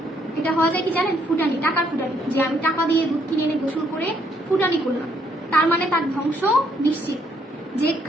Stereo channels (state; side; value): normal; both; correlation 0.70